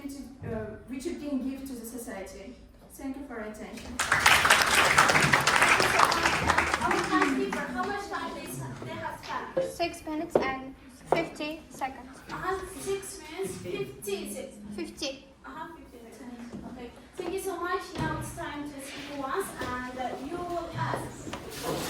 which you can give to the society. Thank you for your attention. Our timekeeper, how much time they have spent? 6 minutes and 50 seconds. 6 minutes, 50 seconds. 50. 50 seconds. Okay. Thank you so much. Now it's time to speak once, and you will ask.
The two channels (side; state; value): both; identical; correlation 1.00